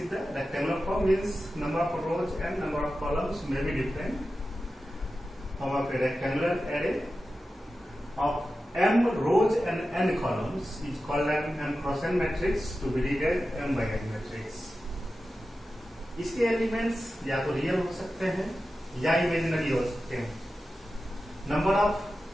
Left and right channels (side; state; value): both; normal; correlation 0.93